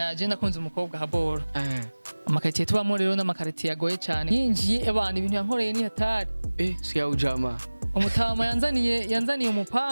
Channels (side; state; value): both; inverted; correlation -1.00